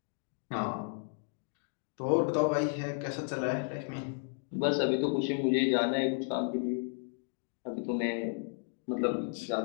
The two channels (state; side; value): silent; right; 56 dB below the other